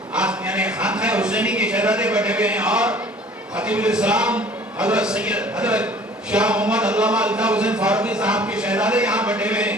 یعنی خانقاہ حسینی کے شہزادے بیٹھے ہوئے ہیں، اور خطیب الاسلام حضرت سید حضرت شاہ محمد علامہ الطاف حسین فاروقی صاحب کے شہزادے یہاں بیٹھے ہوئے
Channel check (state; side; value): normal; both; correlation 0.50